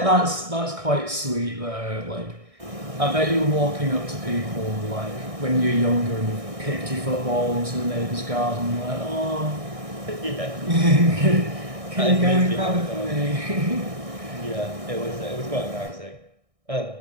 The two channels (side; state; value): left; late; 1.6 ms